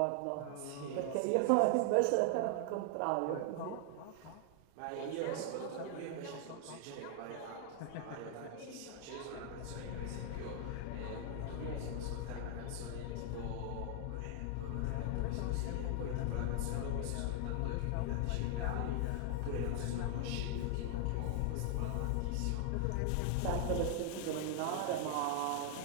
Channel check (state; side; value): different; both; correlation 0.00